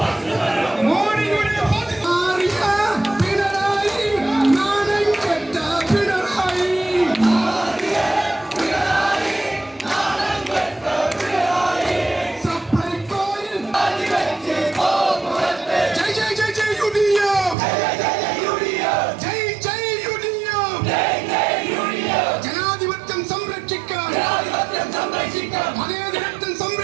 മോദിയുടെ ജനാധിപത്യം സംരക്ഷിക്കാൻ മതേതരത്വം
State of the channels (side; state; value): left; drops out; at 17.6 s